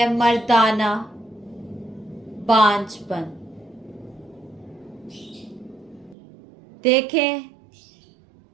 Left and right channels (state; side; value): drops out; left; at 6.2 s